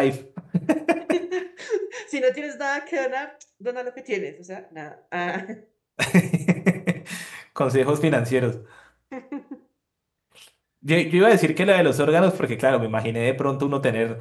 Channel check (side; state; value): both; identical; correlation 1.00